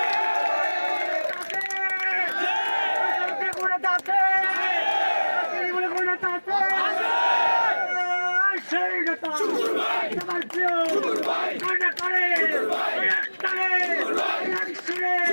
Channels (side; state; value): both; inverted; correlation -1.00